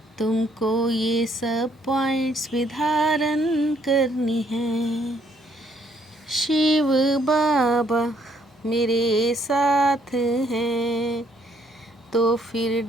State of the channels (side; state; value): both; normal; correlation 0.68